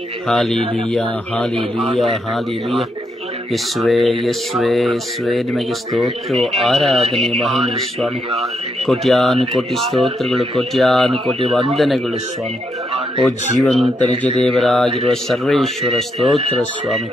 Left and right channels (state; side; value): normal; both; correlation 0.79